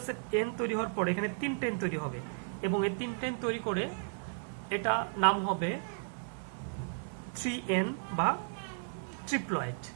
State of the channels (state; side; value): silent; left; digital silence